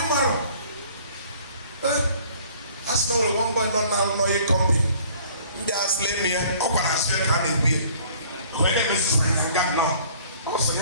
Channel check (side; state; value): both; inverted; correlation -0.54